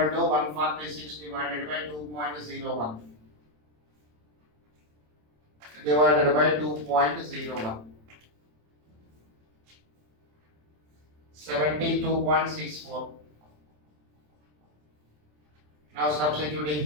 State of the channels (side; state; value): left; late; 27 ms